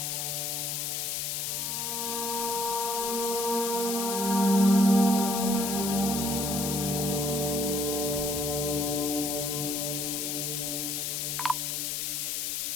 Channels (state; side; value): noise; left; hiss, 1 dB below the sound